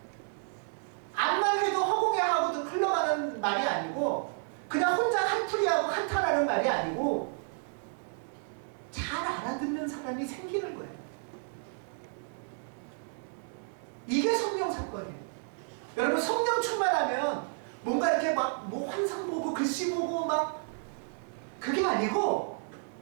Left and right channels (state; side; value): silent; left; 57 dB below the other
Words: 암만 해도 허공에 하고도 흘러가는 말이 아니고 그냥 혼자 한풀이하고 한탄하는 말이 아니고 잘 알아듣는 사람이 생기는 거예요. 이게 성령 사건이에요. 여러분, 성령 충만하면 뭔가 이렇게 막 뭐 환상 보고 글씨 보고 막 그게 아니고